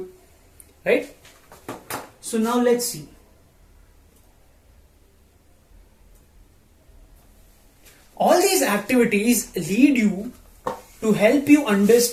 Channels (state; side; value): identical; both; correlation 1.00